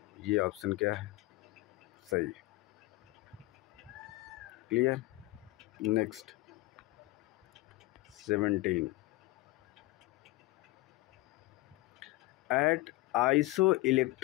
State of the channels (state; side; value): quieter; right; 19.6 dB